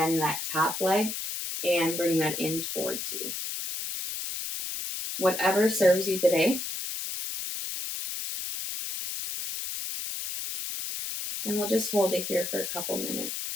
that top leg and bring that in towards you. Whatever serves you today. And we'll just hold it here for a couple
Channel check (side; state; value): left; noise; hiss, 5 dB below the sound